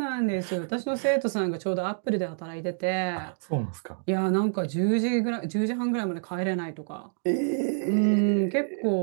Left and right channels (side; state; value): left; silent; digital silence